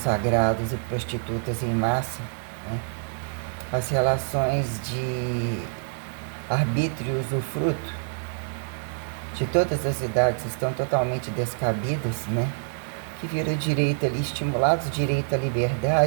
e prostitutas em massa, né? As relações de arbítrio e usufruto de todas as idades estão totalmente descabidas, né? Que vira direito ali, estimulados direito à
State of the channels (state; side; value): silent; left; digital silence